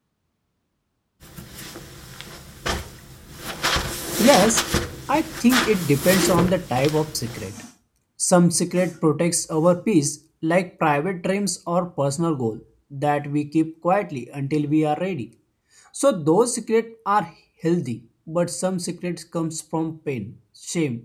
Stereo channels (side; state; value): both; identical; correlation 1.00